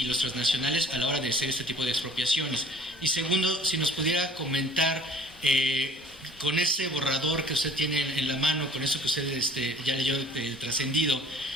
los transnacionales a la hora de hacer este tipo de expropiaciones. Y segundo, si nos pudiera comentar, con ese borrador que usted tiene en la mano, con eso que usted ya leyó trascendido,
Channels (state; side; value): normal; both; correlation 0.50